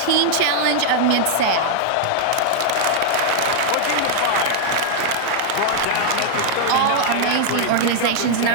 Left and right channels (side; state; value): both; different; correlation -0.01